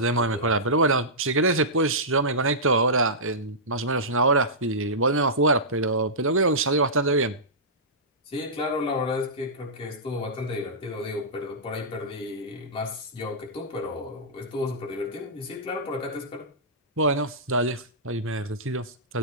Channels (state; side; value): normal; both; correlation -0.16